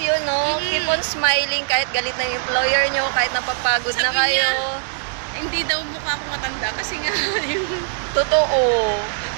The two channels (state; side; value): silent; left; digital silence